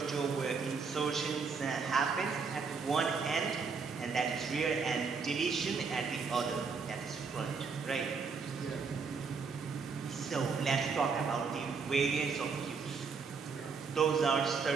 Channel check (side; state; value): left; quieter; 5.2 dB